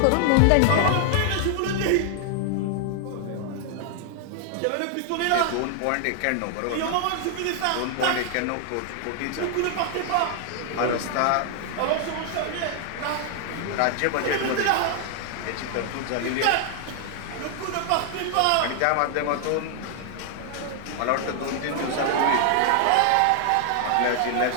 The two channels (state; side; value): different; both; correlation 0.00